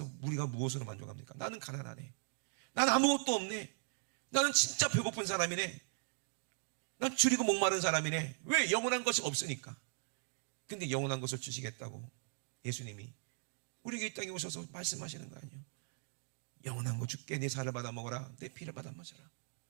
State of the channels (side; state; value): left; silent; digital silence